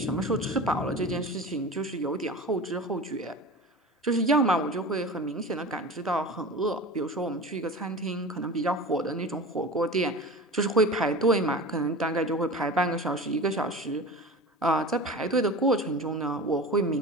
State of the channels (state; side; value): normal; both; correlation 0.34